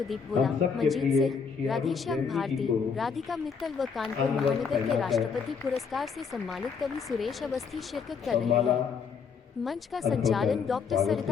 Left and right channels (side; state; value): right; quieter; 5.9 dB